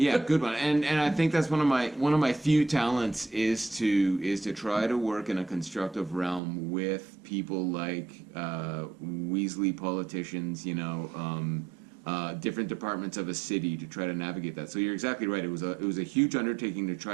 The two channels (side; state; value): left; drops out; at 6.4 s